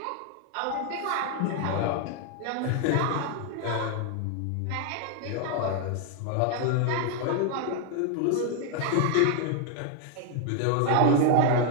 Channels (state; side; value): different; both; correlation 0.00